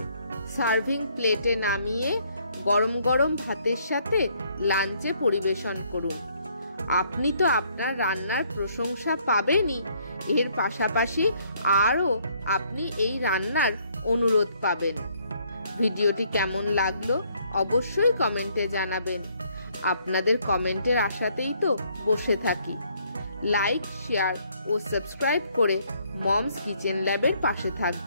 সার্ভিং প্লেটে নামিয়ে গরম গরম ভাতের সাথে লাঞ্চে পরিবেশন করুন। আপনি তো আপনার রান্নার প্রশংসা পাবেনই, এর পাশাপাশি আরও আপনি এই রান্নার অনুরোধ পাবেন। ভিডিওটি কেমন লাগলো অবশ্যই কমেন্টে জানাবেন। আপনাদের কমেন্টের আশাতেই তো বসে থাকি। লাইক, শেয়ার ও সাবস্ক্রাইব করে মমস কিচেন ল্যাবের পাশে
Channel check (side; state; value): both; inverted; correlation -0.67